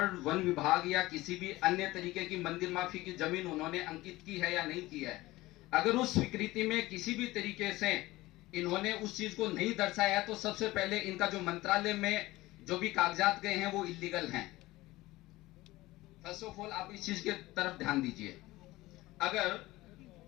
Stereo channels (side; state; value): right; quieter; 18.7 dB